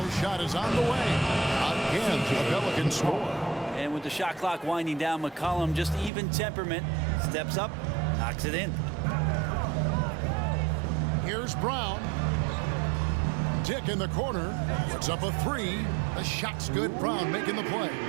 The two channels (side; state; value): left; drops out; at 6.1 s